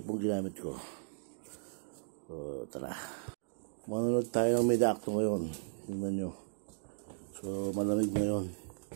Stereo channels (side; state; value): left; silent; digital silence